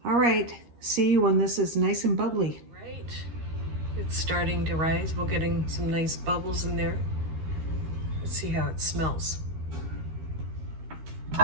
All right, see you when this is nice and bubbly. Right, it's starting to rise. We're getting some nice bubbles in there. Let's see how it smells. So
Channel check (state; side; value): late; left; 13 ms